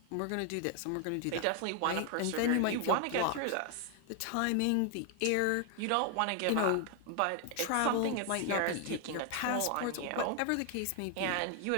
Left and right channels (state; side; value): different; both; correlation 0.01